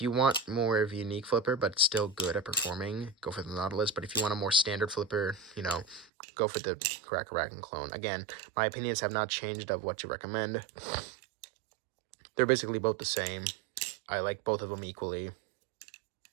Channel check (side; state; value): left; drops out; at 6.1 s